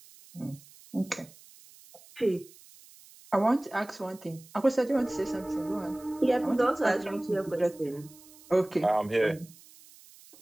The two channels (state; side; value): noise; right; hiss, 23 dB below the sound